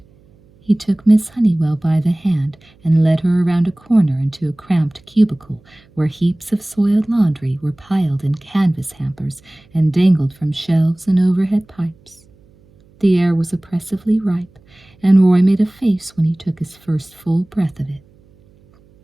He took Miss Honeywell by the hand and led her around a corner into a cramped cubicle where heaps of soiled laundry were piled in canvas hampers and dangled from shelves and overhead pipes. The air was oppressively ripe, and Roy made a face when he took his first full breath of it.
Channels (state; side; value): noise; right; hum, 30 dB below the sound